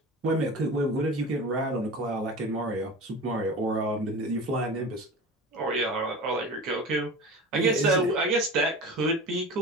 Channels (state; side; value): normal; both; correlation 0.33